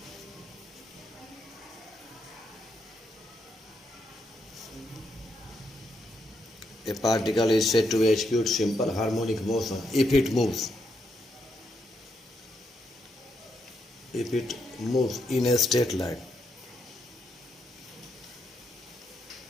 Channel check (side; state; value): both; normal; correlation 0.80